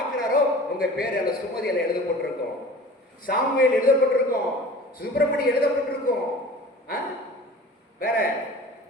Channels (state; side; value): normal; both; correlation 0.42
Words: உங்க பேர் அல்ல சுமதியில எழுதப்பட்டிருக்கும், சாமுவேல் எழுதப்பட்டிருக்கும், சுப்பிரமணி எழுதப்பட்டிருக்கும். வேற